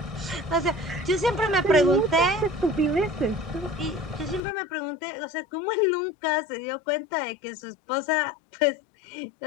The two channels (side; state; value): right; drops out; at 4.4 s